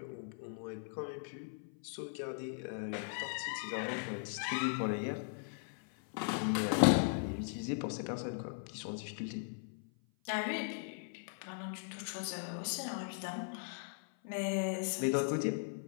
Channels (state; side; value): silent; right; 52 dB below the other